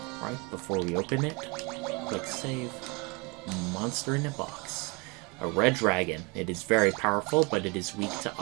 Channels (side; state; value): left; quieter; 28.8 dB